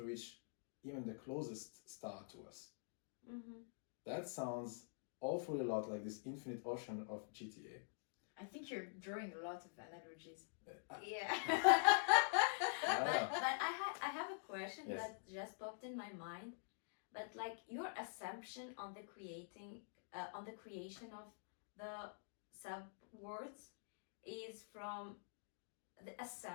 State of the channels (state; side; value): silent; right; digital silence